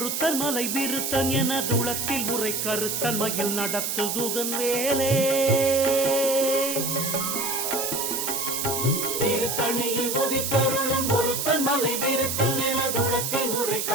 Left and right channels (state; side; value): noise; right; hiss, 1 dB below the sound